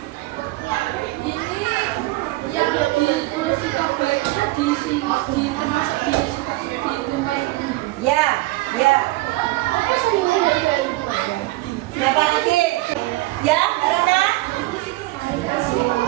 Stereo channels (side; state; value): left; quieter; 19.6 dB